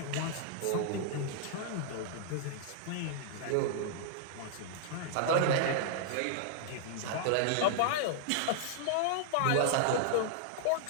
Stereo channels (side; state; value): both; different; correlation -0.01